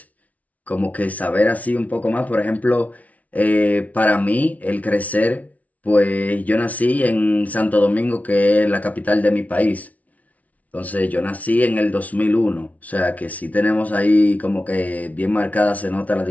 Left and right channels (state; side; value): late; right; 0.070 ms